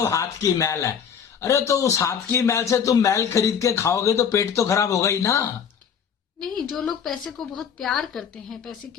हाथ की मैल है। अरे तो उस हाथ की मैल से तुम मैल खरीद के खाओगे तो पेट तो खराब होगा ही ना। नहीं, जो लोग पैसे को बहुत प्यार करते हैं, पैसे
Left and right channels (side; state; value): right; quieter; 7.5 dB